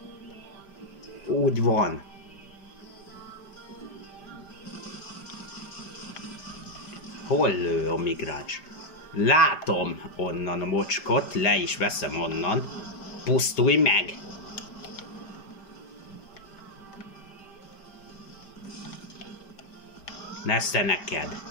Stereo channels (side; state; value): right; late; 5.0 ms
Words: Úgy van. Hol lő a migráns? Látom onnan a mocskot, le is veszem onnan. Pusztulj meg! Nesze